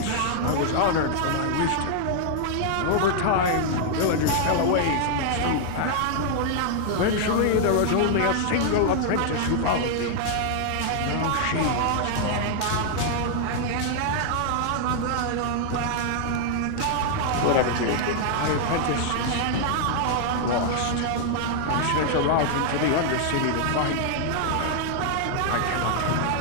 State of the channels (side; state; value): both; different; correlation 0.00